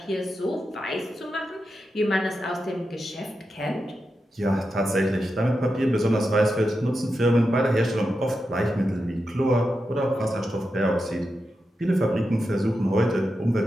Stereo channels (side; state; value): both; normal; correlation 0.88